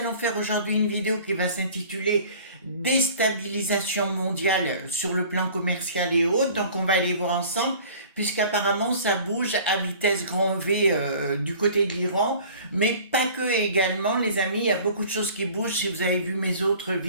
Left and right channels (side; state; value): both; inverted; correlation -0.47